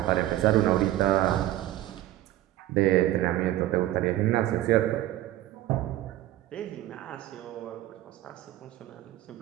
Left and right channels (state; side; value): quieter; left; 14.5 dB